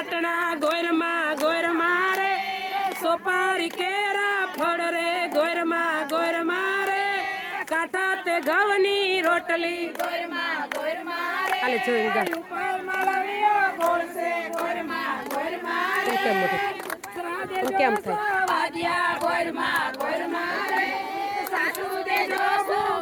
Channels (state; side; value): identical; both; correlation 1.00